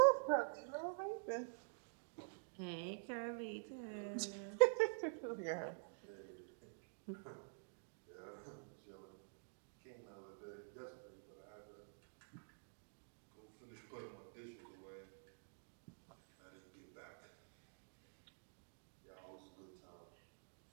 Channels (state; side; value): silent; left; digital silence